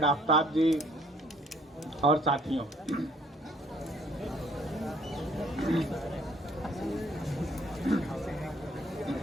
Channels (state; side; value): normal; both; correlation 0.61